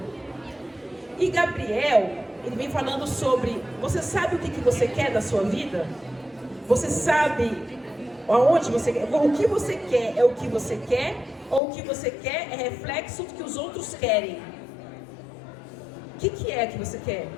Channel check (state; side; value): drops out; right; at 11.6 s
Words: E Gabriel, ele vem falando sobre, você sabe o que você quer da sua vida? Você sabe aonde você quer? O que você quer é o que você quer? Ou o que você quer é reflexo do que os outros querem? O que é que você quer?